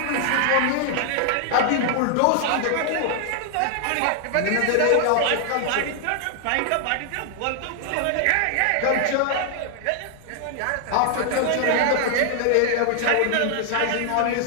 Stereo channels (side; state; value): both; different; correlation 0.00